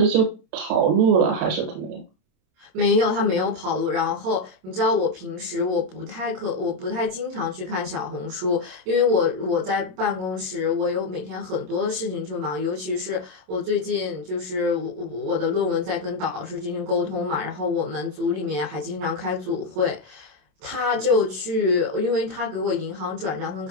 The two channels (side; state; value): left; late; 27 ms